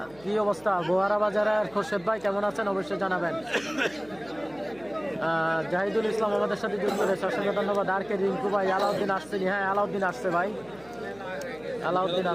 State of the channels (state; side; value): noise; right; hum, 25 dB below the sound